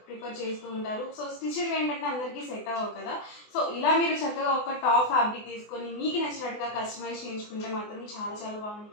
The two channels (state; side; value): late; right; 24 ms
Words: ప్రిఫర్ చేస్తూ ఉంటారు. సో స్టిచ్డ్ ఏంటంటే అందరికీ సెట్ అవ్వవు కదా. సో ఇలా మీరు చక్కగా ఒక టాప్ ఫ్యాబ్రిక్ తీసుకొని మీకు నచ్చినట్టుగా కస్టమైజ్ చేయించుకుంటే మాత్రం చాలా చాలా